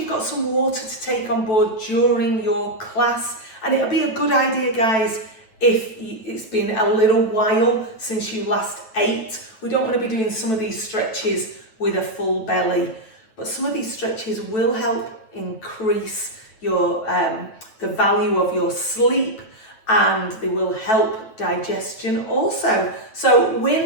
got some water to take on board during your class, and it'll be a good idea, guys, if it's been a little while since you last ate. We don't want to be doing some of these stretches with a full belly, but some of these stretches will help increase your the value of your sleep, and they will help digestion also. So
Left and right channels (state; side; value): late; right; 9.1 ms